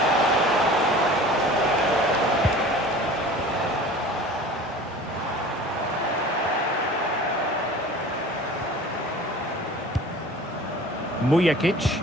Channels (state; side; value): normal; both; correlation 0.42